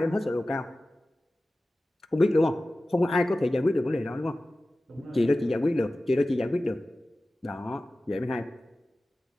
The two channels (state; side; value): normal; both; correlation 0.96